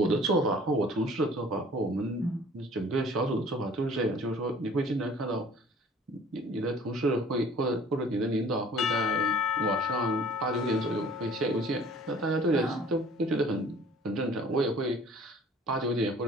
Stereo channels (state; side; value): normal; both; correlation 0.51